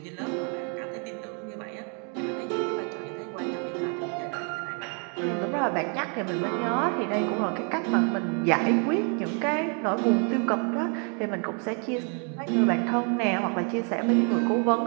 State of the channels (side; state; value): left; quieter; 39.4 dB